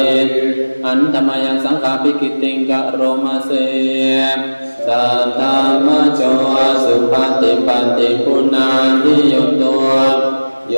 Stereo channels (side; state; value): both; inverted; correlation -1.00